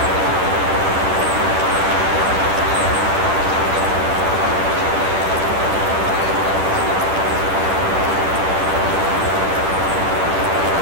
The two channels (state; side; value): late; left; 10 ms